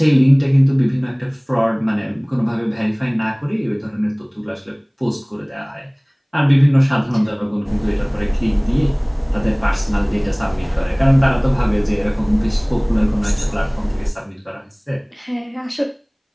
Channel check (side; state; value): both; identical; correlation 1.00